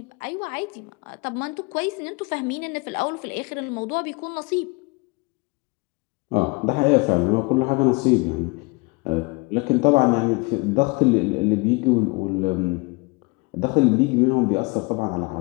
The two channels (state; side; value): quieter; right; 27.9 dB